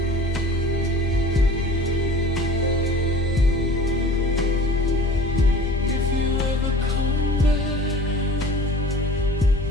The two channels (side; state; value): both; normal; correlation 0.43